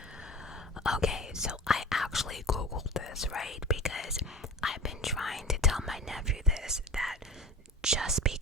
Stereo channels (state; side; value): normal; both; correlation 0.36